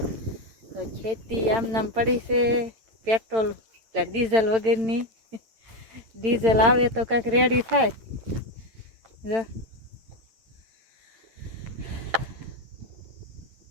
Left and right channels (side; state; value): left; late; 8.9 ms